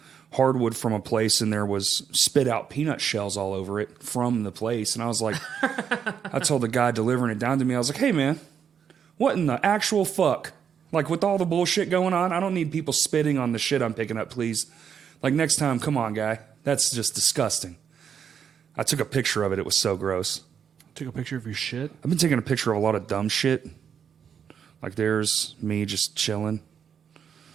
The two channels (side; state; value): left; quieter; 7.7 dB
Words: hardwood from a place, and there was spit out peanut shells all over it from the place. And I was like, I told the guy delivering it down to me, I was like, hey man, what in the actual fuck? Like with all the bullshit going on, I don't need people spitting on the shit I'm picking up, please. Like next time, come on, guy. That's just disgusting. I took a picture of it. It was so gross. Took a picture of your shit. I've been taking a picture of a lot of dumb shit. Like there's me just chilling.